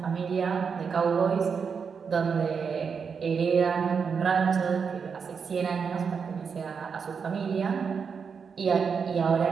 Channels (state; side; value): quieter; left; 6.0 dB